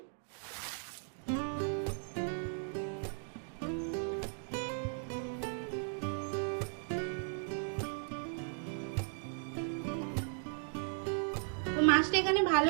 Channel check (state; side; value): silent; left; 53 dB below the other